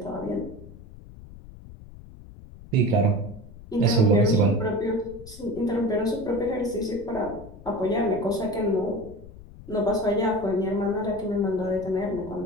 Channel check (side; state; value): left; noise; rumble, 17 dB below the sound